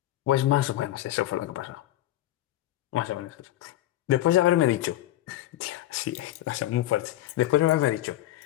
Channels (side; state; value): right; quieter; 14.4 dB